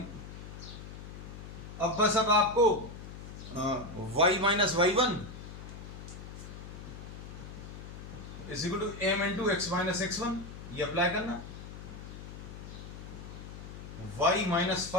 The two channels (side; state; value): left; noise; hum, 12 dB below the sound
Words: अब बस अब आपको y minus y1 is equal to m into x minus x1 ये अप्लाई करना। y minus